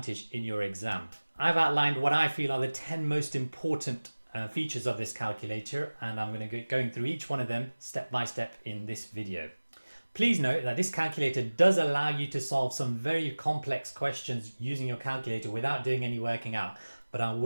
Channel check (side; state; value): both; inverted; correlation -1.00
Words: in your exam. I've outlined what I feel are the 10 most important features of this calculator, and I'm going to go going through each one of them step by step in this video. Please note that this calculator does allow you to solve some very complex questions using your calculator without doing any working out, but I